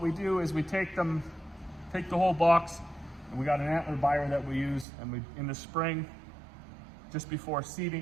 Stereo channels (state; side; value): drops out; left; at 4.9 s